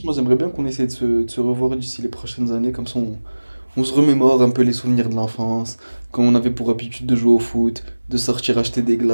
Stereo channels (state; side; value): inverted; both; correlation -1.00